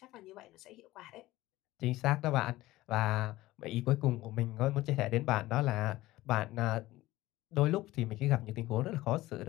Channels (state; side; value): quieter; right; 17.4 dB